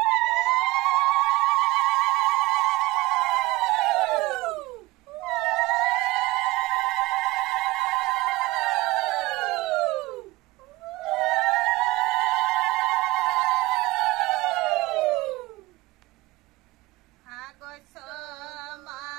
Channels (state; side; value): quieter; left; 20.3 dB